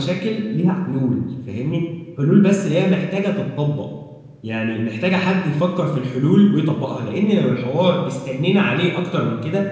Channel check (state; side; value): identical; both; correlation 1.00